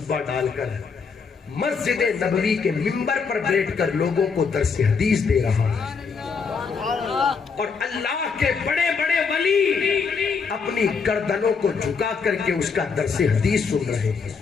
ڈال کر مسجد نبوی کے منبر پر بیٹھ کر لوگوں کو درس حدیث دے رہا ہے. اور اللہ کے بڑے بڑے ولی اپنی گردنوں کو جھکا کر کے اس کا درس حدیث سن رہے ہیں.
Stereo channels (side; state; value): right; quieter; 5.4 dB